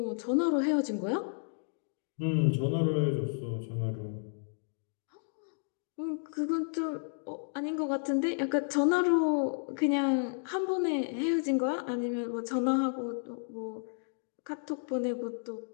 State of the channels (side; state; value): right; silent; digital silence